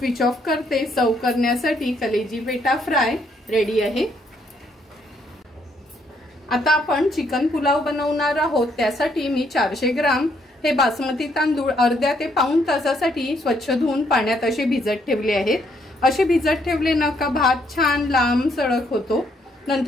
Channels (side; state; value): both; normal; correlation 0.71